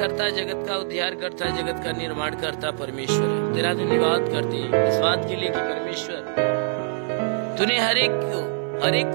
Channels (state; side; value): silent; left; digital silence